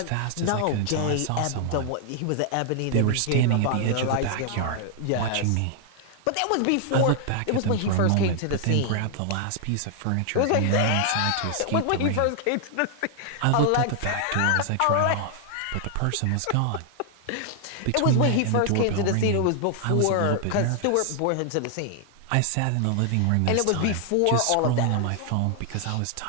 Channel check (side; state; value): both; different; correlation 0.00